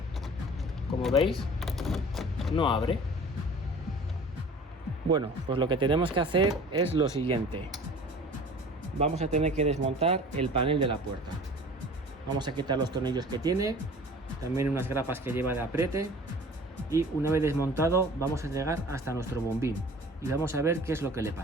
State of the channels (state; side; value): normal; both; correlation 0.44